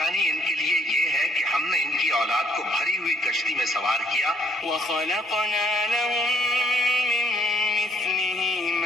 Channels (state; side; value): normal; both; correlation 0.66